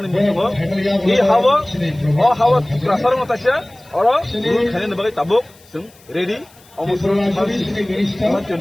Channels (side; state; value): left; noise; hiss, 27 dB below the sound